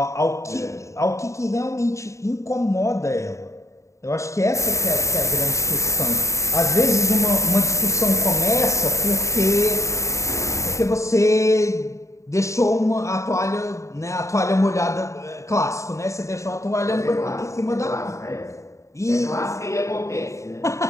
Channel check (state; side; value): late; right; 0.15 ms